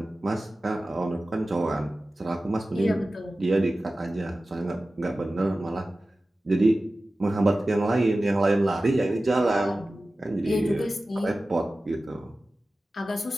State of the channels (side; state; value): both; normal; correlation 0.95